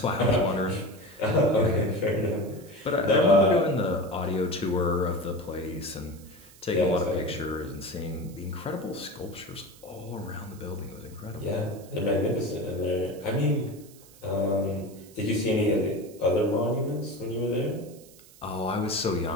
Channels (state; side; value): noise; right; hiss, 23 dB below the sound